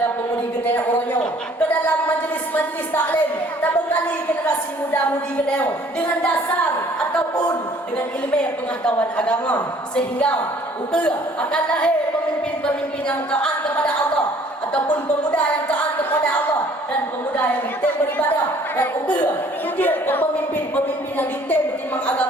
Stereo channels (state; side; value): normal; both; correlation 0.57